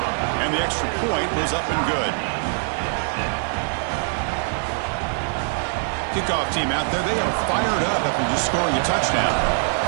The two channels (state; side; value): silent; left; 57 dB below the other